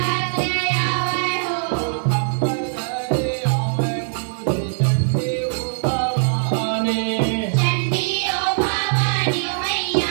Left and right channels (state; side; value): silent; left; digital silence